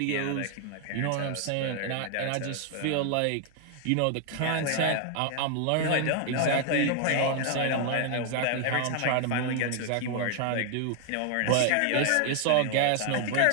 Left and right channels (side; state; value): both; different; correlation 0.00